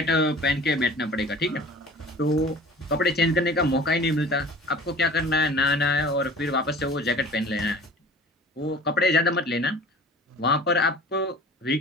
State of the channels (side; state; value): both; normal; correlation 0.44